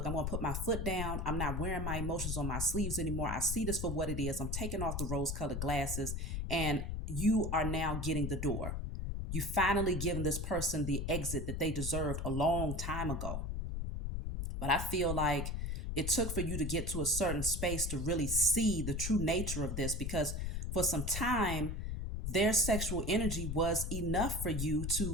I'm going to put my foot down. I'm not wearing my emotions on my sleeves anymore. I see this for what it is. I'm taking off the rose colored glasses, and you are now getting the door. You finally given this person the exit that they deserved a long time ago. But I feel like it took for you to get to a certain space to really see the true nature of this, because for some time, their sexual energy was enough for you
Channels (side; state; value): left; noise; rumble, 3 dB below the sound